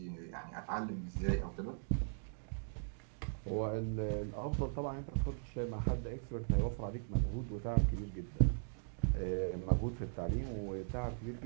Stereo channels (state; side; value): silent; left; digital silence